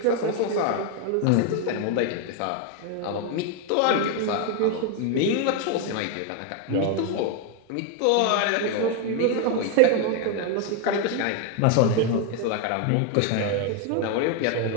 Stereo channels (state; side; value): different; both; correlation 0.01